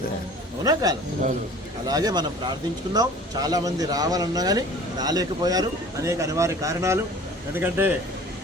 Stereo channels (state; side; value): normal; both; correlation 0.46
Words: అవునా కాదు? అలాగే మనం ప్రార్థించుకుందాం. చాలామంది రావాలన్నా కానీ రాలేకపోయారు, అనేక అనివార్య కారణాలు. ఎందుకంటే